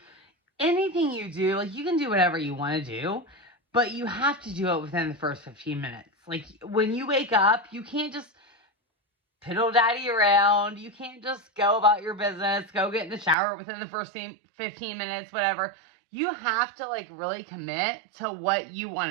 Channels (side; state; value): left; drops out; at 13.4 s